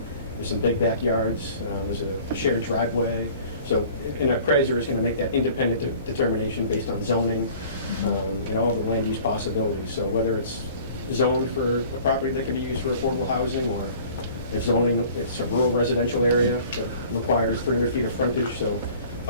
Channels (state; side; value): inverted; both; correlation -0.48